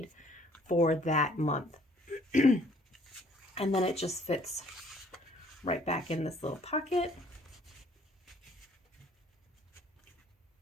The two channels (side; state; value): both; normal; correlation 0.59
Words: for that month. And then it just fits right back in this little pocket.